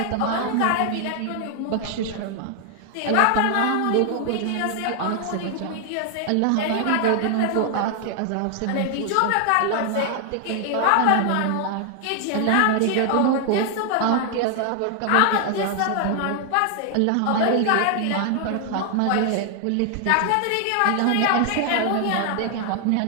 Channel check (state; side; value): different; both; correlation 0.00